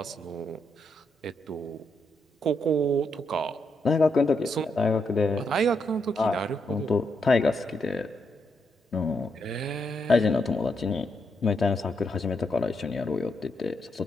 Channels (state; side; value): normal; both; correlation 0.80